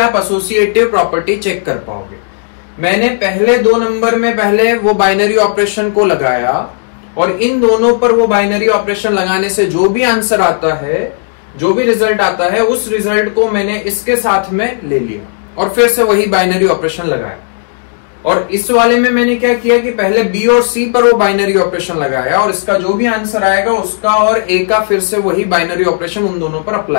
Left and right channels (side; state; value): right; silent; digital silence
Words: एसोसिएटिव प्रॉपर्टी चेक कर पाओगे। मैंने पहले 2 नंबर में पहले वो बाइनरी ऑपरेशन को लगाया और इन दोनों पर वो बाइनरी ऑपरेशन लगाने से जो भी आंसर आता है, जो भी रिजल्ट आता है, उस रिजल्ट को मैंने इसके साथ में ले लिया और फिर से वही बाइनरी ऑपरेशन लगाया। और इस वाले में मैंने क्या किया कि पहले बी और सी पर वो बाइनरी ऑपरेशन लगाया और इसका जो भी आंसर आएगा उसका और ए का फिर से वही बाइनरी ऑपरेशन उन दोनों पर